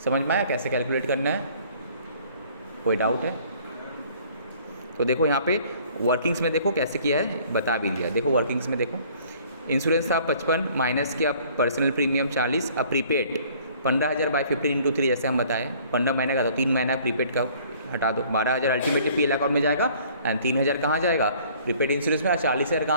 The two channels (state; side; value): inverted; both; correlation -0.55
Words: समझ में आया कैसे कैलकुलेट करना है? कोई डाउट है? तो देखो यहाँ पे वर्किंग्स में देखो कैसे किया है, बता भी दिया। देखो वर्किंग्स में देखो, इंश्योरेंस था 55 माइनस किया पर्सनल प्रीमियम 40, अब प्रीपेड 15,000 बाई 15 इंटू 3 जैसे हम बताएं, 15 महीने का, तो 3 महीना प्रीपेड का हटा दो, 12,000 अल्टीमेटली पीएल अकाउंट में जाएगा, एंड 3,000 कहाँ जाएगा? प्रीपेड इंश्योरेंस में, और 40,000